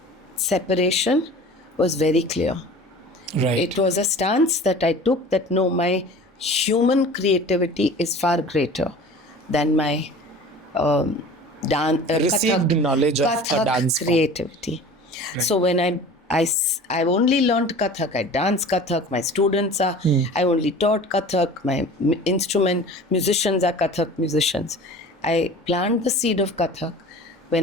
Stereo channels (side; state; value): both; normal; correlation 0.41